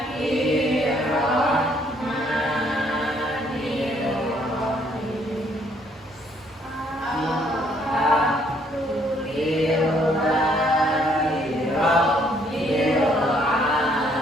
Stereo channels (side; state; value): both; normal; correlation 0.66